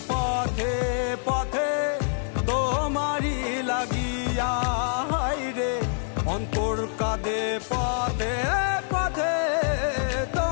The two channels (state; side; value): silent; right; 61 dB below the other